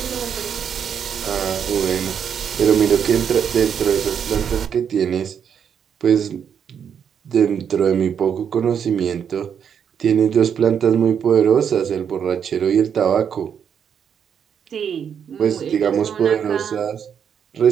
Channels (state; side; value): quieter; left; 7.8 dB